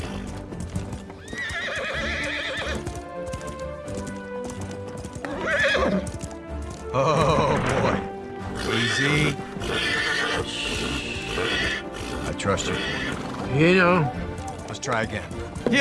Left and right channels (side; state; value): both; identical; correlation 1.00